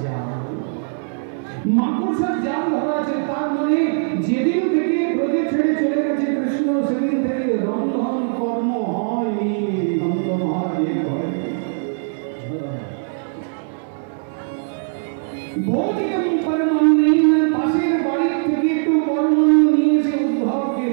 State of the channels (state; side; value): silent; left; digital silence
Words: জাল ধরা আছে। তার মানে যেদিন থেকে ব্রজে ছেড়ে চলে গেছে কৃষ্ণ, সেদিন থেকে রন্ধন কর্ম হয়নি নন্দ মহারাজের ঘরে। ভৌতিকম পরমান্নেন, পাশের বাড়ি থেকে একটু পরমান্ন নিয়ে এসে উদ্ধবকে